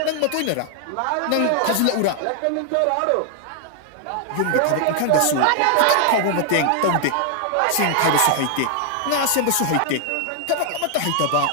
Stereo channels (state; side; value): different; both; correlation 0.00